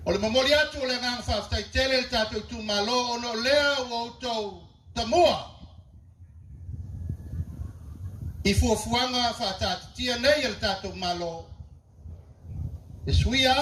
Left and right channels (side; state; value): both; identical; correlation 1.00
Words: O le mamori atu o le ngang whaftai tele le tātou tu malo ono lea o autou tamua. I fuafuanga whatatatia nei le tātou malo. E sui